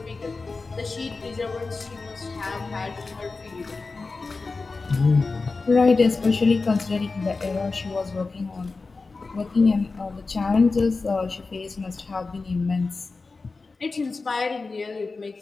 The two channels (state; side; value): quieter; right; 4.0 dB